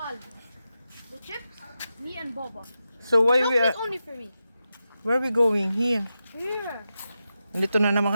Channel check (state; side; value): inverted; both; correlation -0.90